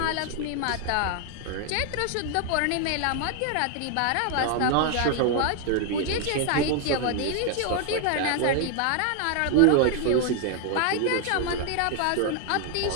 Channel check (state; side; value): different; both; correlation 0.00